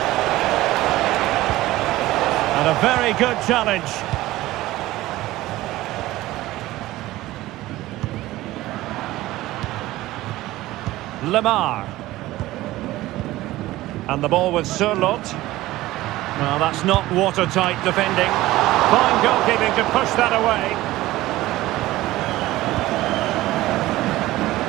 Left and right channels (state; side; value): quieter; left; 17.0 dB